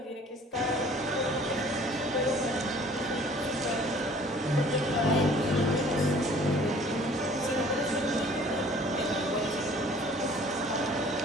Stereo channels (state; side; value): normal; both; correlation 0.52